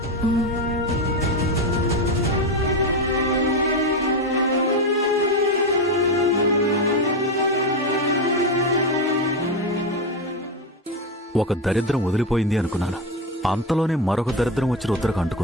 ఒక దరిద్రం వదిలిపోయింది అనుకున్నాను. అంతలోనే మరొక దరిద్రం వచ్చి రుద్రకు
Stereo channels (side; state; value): both; normal; correlation 0.14